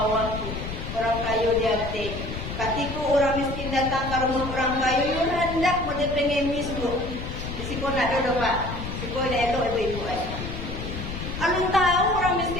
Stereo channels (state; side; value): noise; left; rumble, 7 dB below the sound